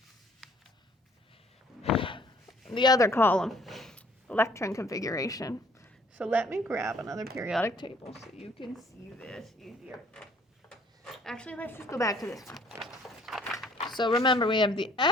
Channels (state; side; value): normal; both; correlation 0.59